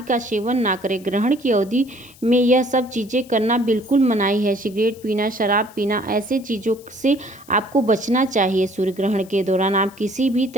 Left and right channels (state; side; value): noise; left; hiss, 24 dB below the sound